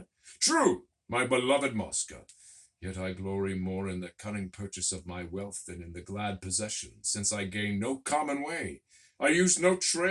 True, my beloved Mosca. Yet I glory more in the cunning purchase of my wealth than in the glad possession, since I gain no common way. I use no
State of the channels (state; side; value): identical; both; correlation 1.00